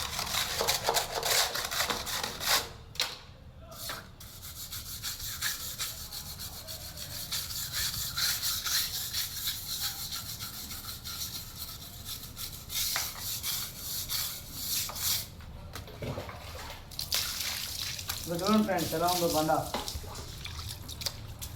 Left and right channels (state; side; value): identical; both; correlation 1.00